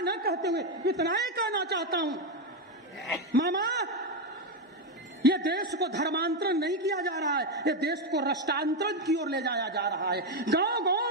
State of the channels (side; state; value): both; normal; correlation 0.08